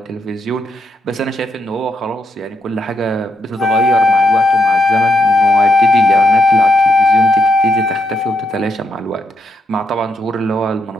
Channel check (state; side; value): normal; both; correlation 0.79